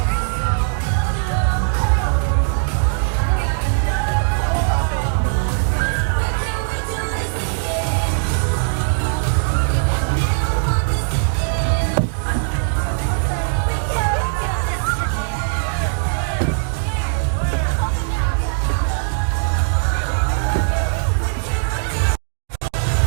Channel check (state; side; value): silent; left; digital silence